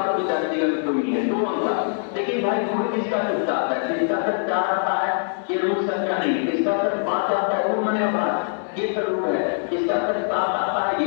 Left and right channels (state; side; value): silent; right; digital silence